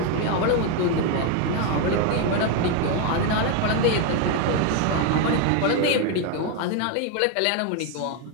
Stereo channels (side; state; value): both; different; correlation 0.01